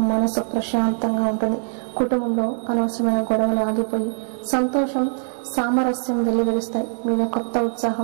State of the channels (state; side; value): silent; left; digital silence